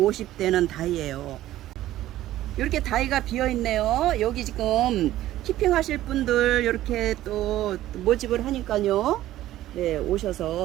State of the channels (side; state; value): left; quieter; 14.2 dB